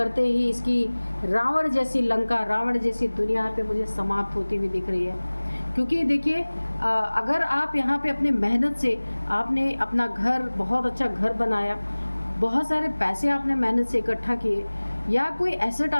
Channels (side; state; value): both; inverted; correlation -1.00